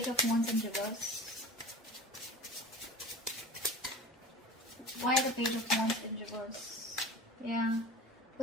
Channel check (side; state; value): both; normal; correlation 0.37